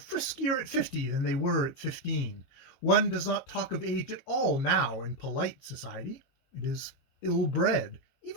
at 50 than they were at 15. One does not talk of age at all now in polite society. It is ill-bred,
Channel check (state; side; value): late; right; 22 ms